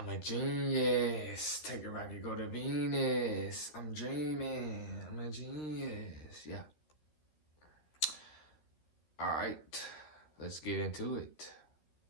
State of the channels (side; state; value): right; late; 13 ms